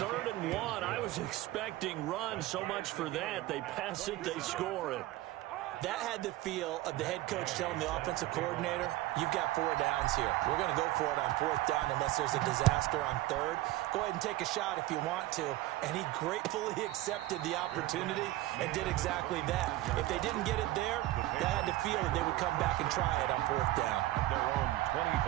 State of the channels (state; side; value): quieter; left; 16.7 dB